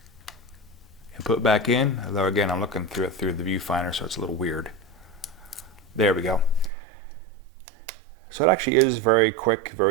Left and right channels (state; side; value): drops out; left; at 6.7 s